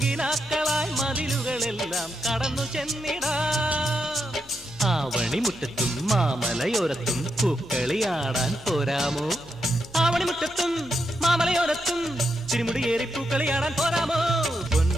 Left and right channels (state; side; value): noise; left; hum, 24 dB below the sound